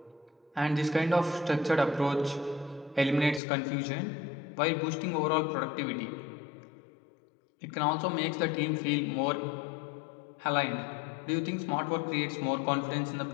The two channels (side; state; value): right; drops out; at 3.4 s